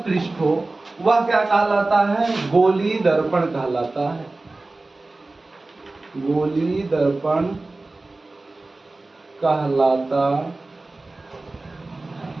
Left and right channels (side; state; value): left; quieter; 3.2 dB